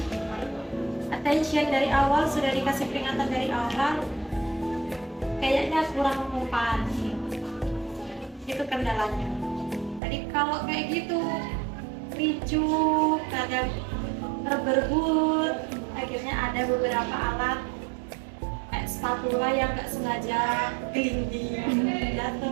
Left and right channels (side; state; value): left; drops out; at 10.0 s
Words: attention dari awal, sudah dikasih peringatan dari awal, kayaknya kurang mempan. Itu kendalanya. Jadi kalau kayak gitu ricu, kadang berebut, akhirnya ada beberapa alat kayak spatula yang nggak sengaja gelinding,